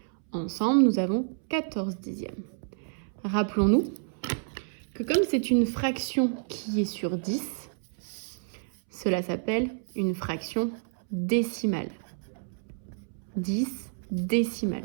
Ensemble, nous avons 14 dixièmes. Rappelons-nous que comme c'est une fraction qui est sur 10, cela s'appelle une fraction décimale. 10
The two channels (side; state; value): left; silent; 58 dB below the other